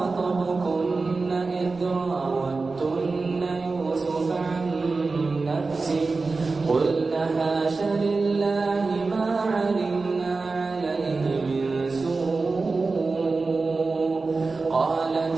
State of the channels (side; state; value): left; quieter; 3.9 dB